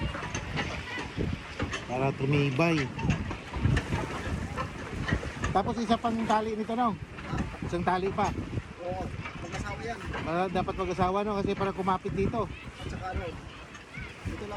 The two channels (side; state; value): both; identical; correlation 1.00